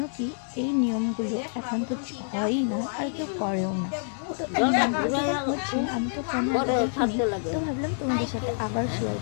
কি এই নিয়মগুলো এখন তো হয়ই না আর কেউ করেও না। তো এই নিয়মগুলো যখন হচ্ছে আমি তো ফোনে আগে দেখিনি, তো ভাবলাম তোমাদের সাথে আবার শেয়ার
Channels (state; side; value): silent; right; digital silence